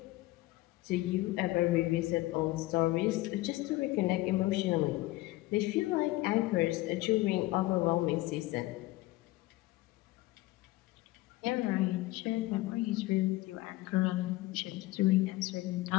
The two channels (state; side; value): quieter; right; 18.8 dB